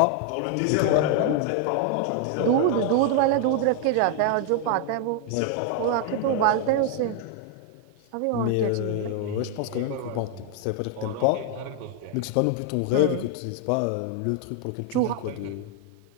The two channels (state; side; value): different; both; correlation 0.00